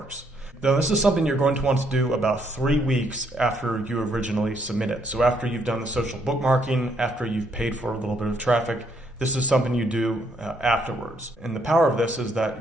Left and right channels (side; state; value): both; normal; correlation 0.71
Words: Now this is something you're going to want to do about 3 weeks after you originally submit it. So after you've done the social bookmarking, after you've paid for a little bit of traffic, this is something you do afterwards. And the power of this is